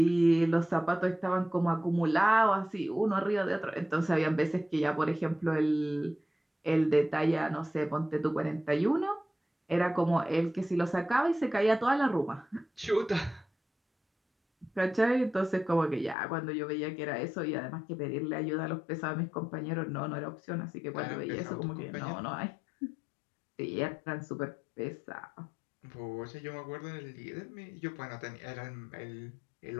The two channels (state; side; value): drops out; right; at 16.2 s